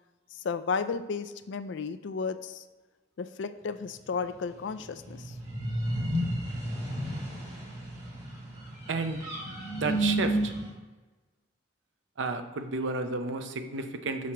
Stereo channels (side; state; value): both; normal; correlation 0.34